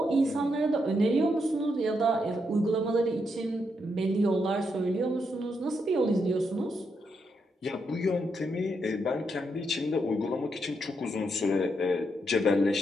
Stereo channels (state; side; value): normal; both; correlation 0.80